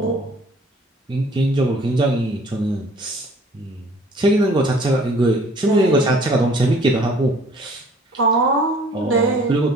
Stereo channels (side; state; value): both; normal; correlation 0.54